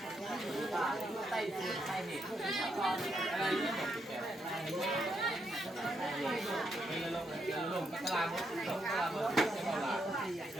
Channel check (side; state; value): both; normal; correlation 0.79